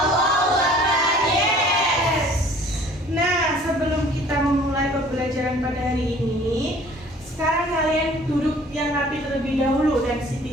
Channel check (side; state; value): both; normal; correlation 0.52